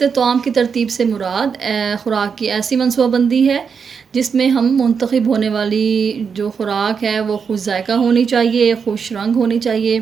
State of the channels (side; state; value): left; quieter; 6.2 dB